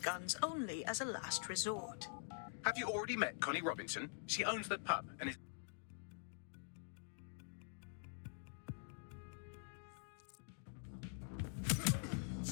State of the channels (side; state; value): right; silent; digital silence